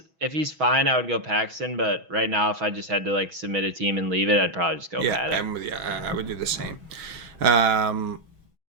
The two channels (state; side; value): late; left; 6.2 ms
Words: fine, I would go Paxton. But right now, if I just had to like submit a team and leave it, I'd probably just go Paddock. I'm with you. I would do the same.